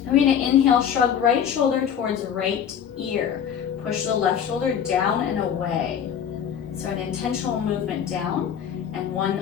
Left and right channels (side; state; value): right; quieter; 8.5 dB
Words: We're gonna inhale, shrug right shoulder towards right ear. Push the left shoulder down and away. So an intentional movement down, and